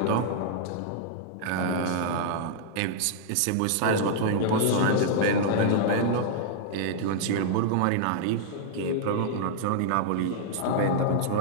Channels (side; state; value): both; different; correlation -0.01